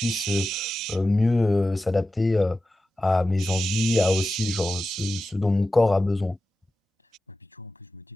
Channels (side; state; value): both; normal; correlation 0.93